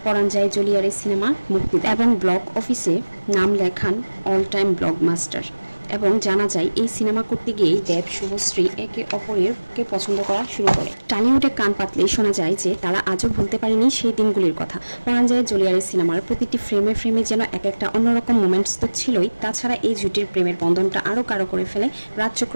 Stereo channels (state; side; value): inverted; both; correlation -1.00